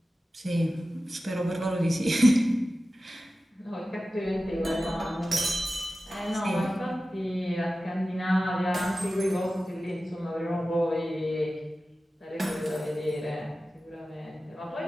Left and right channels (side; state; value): both; normal; correlation 0.95